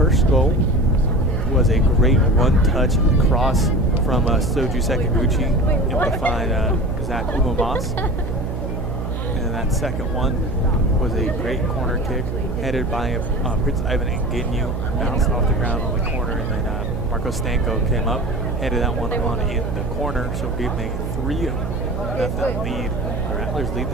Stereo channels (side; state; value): right; noise; hum, 4 dB below the sound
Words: goal was a great one-touch cross from Soju Sekiguchi, able to find Zach Umamas. And that second one was a great corner kick headed by Prince Ivan Nginyu, bounced off the ground on the corner, and then Marco Stanko came up, headed that one on in the corner, so gave them a 3-0 lead. The Rattlers lead